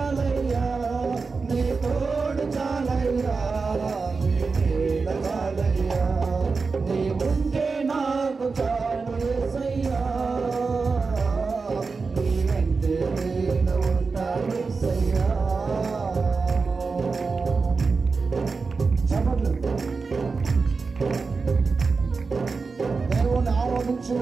నీ తోడు చాలయ్యా నీ నీడ చాలయ్యా నీ ఉంటే నాకు చాలు యేసయ్యా నీ వెంటే నేను ఉంటాను యేసయ్యా దేవుని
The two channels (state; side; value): quieter; left; 4.5 dB